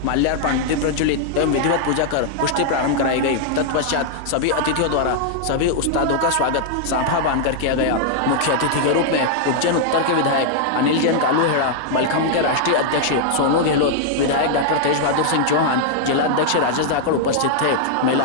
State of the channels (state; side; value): different; both; correlation -0.01